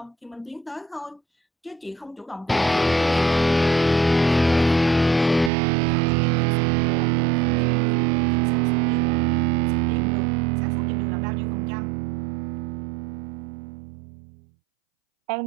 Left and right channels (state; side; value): drops out; left; at 5.5 s